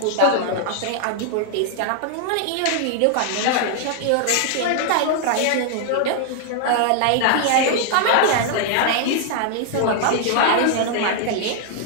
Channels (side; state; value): both; different; correlation 0.00